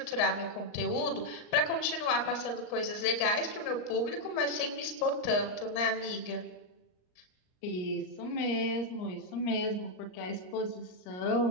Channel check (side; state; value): right; late; 39 ms